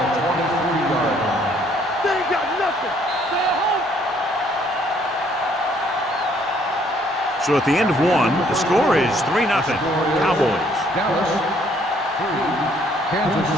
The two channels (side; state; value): both; normal; correlation 0.64